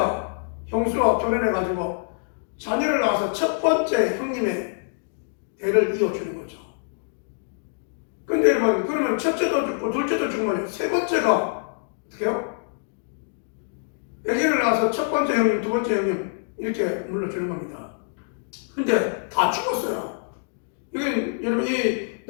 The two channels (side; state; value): right; silent; digital silence